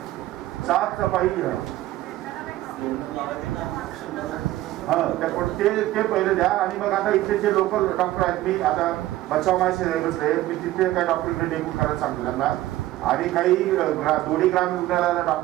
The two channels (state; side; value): quieter; left; 15.6 dB